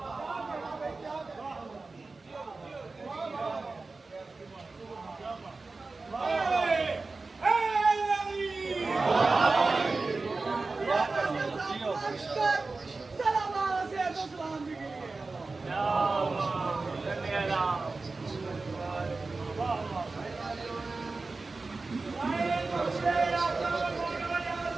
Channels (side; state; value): left; quieter; 3.7 dB